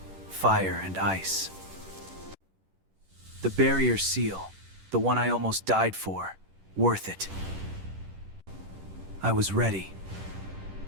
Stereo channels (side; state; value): left; late; 10 ms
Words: Fire and ice. The barrier seal. The one I almost died for. Worth it. I was ready.